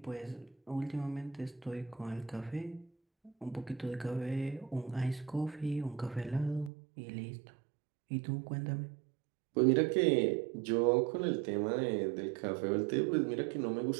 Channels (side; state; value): left; drops out; at 6.7 s